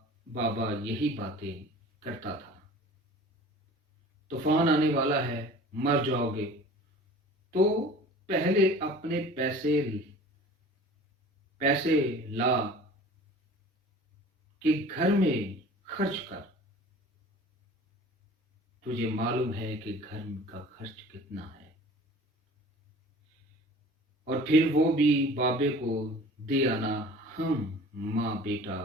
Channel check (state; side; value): normal; both; correlation 0.44